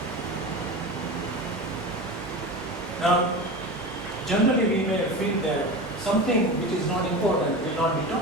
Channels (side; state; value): both; normal; correlation 0.27